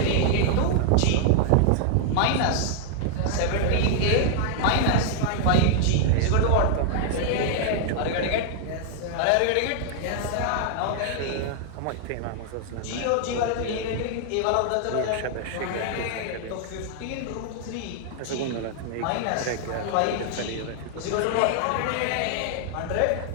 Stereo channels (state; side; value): different; both; correlation 0.00